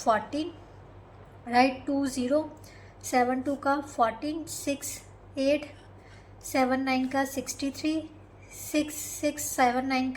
राइट, 20, 7 2 का 14, 6 8 7 9 का 63, 6 6 7 9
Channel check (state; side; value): identical; both; correlation 1.00